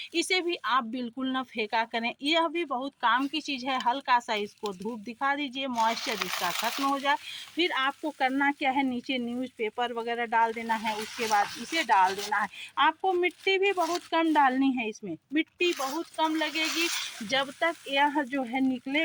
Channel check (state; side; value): identical; both; correlation 1.00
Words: इसे भी आप बिल्कुल ना फेंका करें, यह भी बहुत काम की चीज़ है। हल्का सा इसको धूप दिखा दीजिए, मॉइस्चर इसका खत्म हो जाए। फिर आपको करना क्या है, नीचे न्यूज़पेपर वगैरह डाल देना है, उसके बाद इसे डाल देना है। आपको मिट्टी भी बहुत कम डालनी है, इसमें मिट्टी बहुत कम लगेगी। जब तक यह जो है